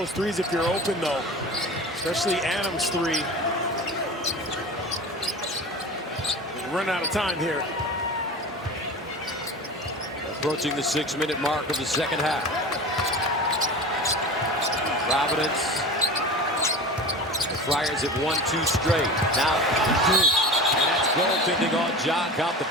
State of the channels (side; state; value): both; normal; correlation 0.32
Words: threes if you're open, though, especially Adams' 3. We run out of time here. Approaching the 6-minute mark of the second half. Providence. The Friars have won 2 straight. Now, and that's goaltending on John. Count the